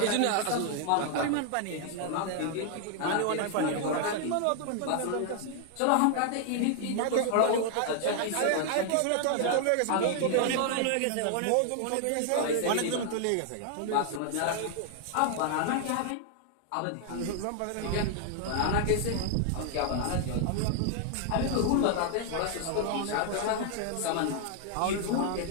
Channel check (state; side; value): different; both; correlation 0.00